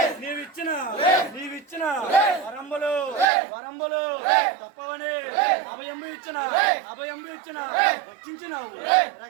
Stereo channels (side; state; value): left; drops out; at 3.2 s